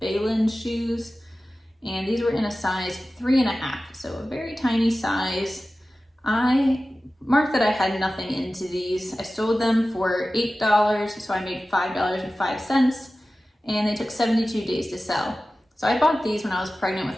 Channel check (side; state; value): both; normal; correlation 0.95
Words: shoes. And these were in a size 3.5, so a very tiny size. I marked that I had nothing into these. I sold them for $8, so I made $5.05, and they took 72 days to sell. So I bought these when I was pregnant